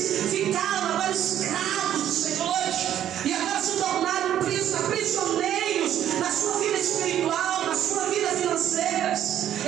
ficaram agora escravos dos senhores, e agora se tornaram prisioneiros na sua vida espiritual, na sua vida financeira.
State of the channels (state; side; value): quieter; left; 11.0 dB